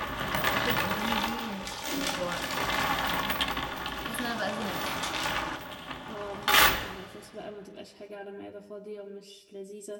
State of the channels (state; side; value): identical; both; correlation 1.00